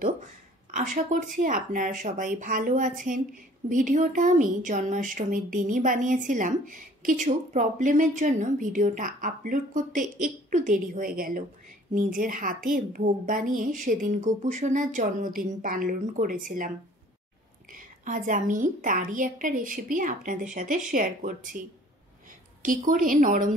আশা করছি আপনারা সবাই ভালো আছেন। ভিডিওটা আমি জন্মাষ্টমীর দিনই বানিয়েছিলাম। কিছু প্রবলেমের জন্য ভিডিওটা আপলোড করতে একটু দেরি হয়ে গেল। নিজের হাতে ভোগ বানিয়ে সেদিন গোপু সোনার জন্মদিন পালন করেছিলাম। আজ আমি তারই একটা রেসিপি আপনাদের সাথে শেয়ার করছি। কি করে নরম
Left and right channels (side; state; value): both; normal; correlation 0.53